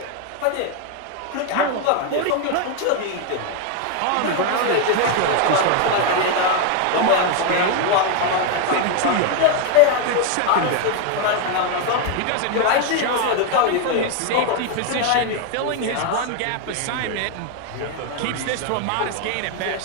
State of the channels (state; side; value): different; both; correlation 0.01